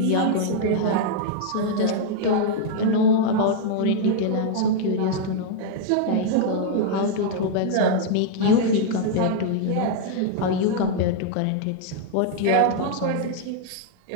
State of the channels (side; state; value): both; different; correlation -0.01